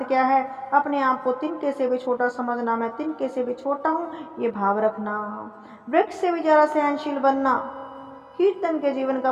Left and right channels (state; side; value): identical; both; correlation 1.00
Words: क्या है, अपने आप को तिनके से भी छोटा समझना, मैं तिनके से भी छोटा हूँ, ये भाव रखना। वृक्ष से भी जरा सहनशील बनना, कीर्तन के जीवन